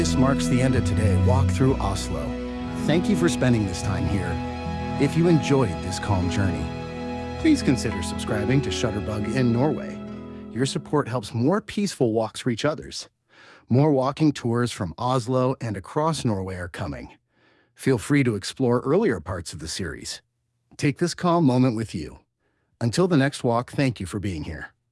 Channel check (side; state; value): both; identical; correlation 1.00